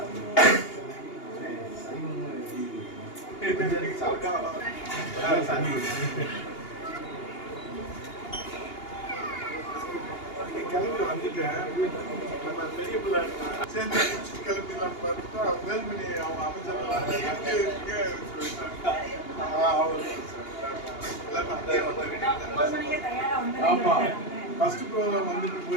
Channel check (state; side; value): late; right; 2.8 ms